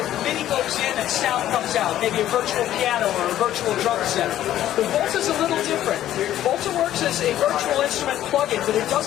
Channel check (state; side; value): quieter; right; 12.5 dB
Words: MIDI goes in and sound comes out, maybe a virtual piano or a virtual drum set. But Volta's a little different. Volta works as a virtual instrument plug-in, but it